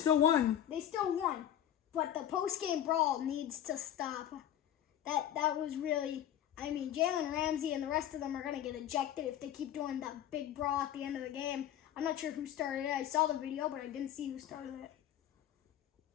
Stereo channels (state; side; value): quieter; right; 10.9 dB